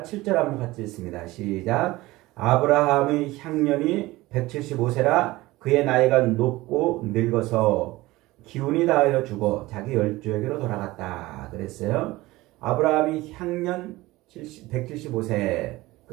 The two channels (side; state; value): left; quieter; 19.2 dB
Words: 7절 한번 같이 읽습니다. 시작. 아브라함의 향년이 175세라 그의 나이가 높고 늙어서 기운이 다하여 죽어 자기 열조에게로 돌아갔다. 그랬어요. 아브라함이 향년 175세